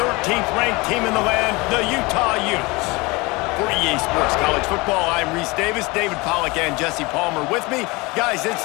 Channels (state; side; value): quieter; right; 24.5 dB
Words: ranked team in the land, the Utah Utes. For EA Sports College Football, I'm Reese Davis, David Pollack and Jesse Palmer with me. Guys, it's